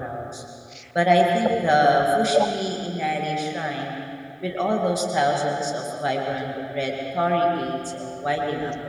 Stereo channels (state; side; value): identical; both; correlation 1.00